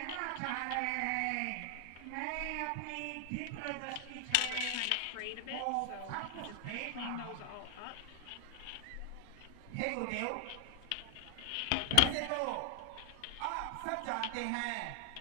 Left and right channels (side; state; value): both; different; correlation 0.00